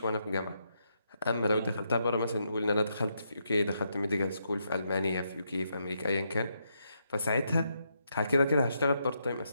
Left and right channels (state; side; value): inverted; both; correlation -0.80